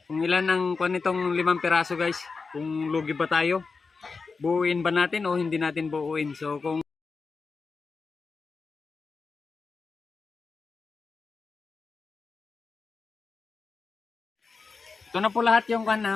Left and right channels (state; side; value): quieter; right; 4.6 dB